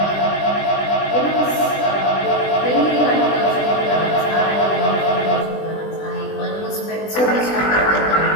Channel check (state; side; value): late; right; 20 ms